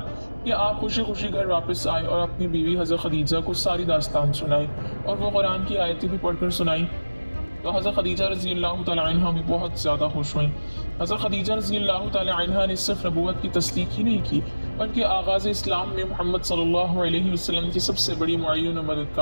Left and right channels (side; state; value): both; inverted; correlation -1.00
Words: कि आप खुशी खुशी घर वापस आए और अपनी बीवी हज़रत खदीजा को सारी दास्तान सुनाई और वो कुरान की आयतें भी पढ़कर सुनाई। तो हज़रत खदीजा रज़ी अल्लाह तआला अन्हा भी बहुत ज़्यादा खुश हुई। हज़रत खदीजा रज़ी अल्लाह तआला अन्हा ने सिर्फ नबूवत की तस्दीक ही नहीं की बल्कि आगाज़ इस्लाम में मोहम्मद सल्लल्लाहु अलैहि वसल्लम की सबसे बड़ी मुअय्यन और